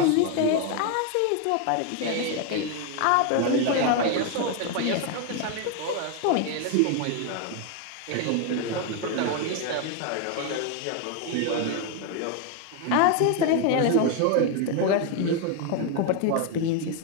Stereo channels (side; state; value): both; different; correlation 0.01